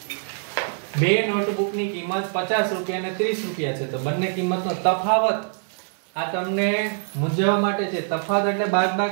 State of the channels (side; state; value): left; silent; digital silence